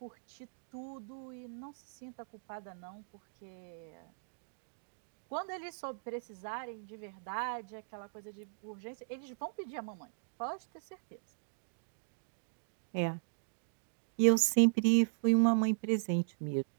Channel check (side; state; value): left; silent; digital silence